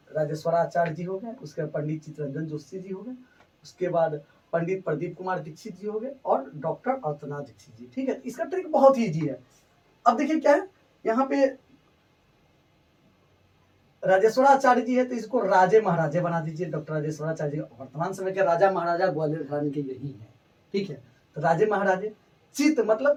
राजेश्वराचार्य जी हो गए, उसके पंडित चित्तरंजन जोशी जी हो गए, उसके बाद पंडित प्रदीप कुमार दीक्षित जी हो गए और डॉक्टर अर्चना दीक्षित जी। ठीक है, इसका ट्रिक बहुत ही इजी है। अब देखिए क्या है, यहाँ पे राजेश्वराचार्य जी है तो इसको राजे महाराजे बना दीजिए। डॉक्टर राजेश्वराचार्य जी वर्तमान समय के राजा महाराजा ग्वालियर घराने के यही है। ठीक है, तो राजे महाराजे, चित्त मतलब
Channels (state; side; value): identical; both; correlation 1.00